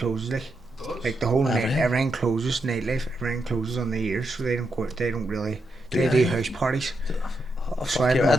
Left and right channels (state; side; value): normal; both; correlation 0.83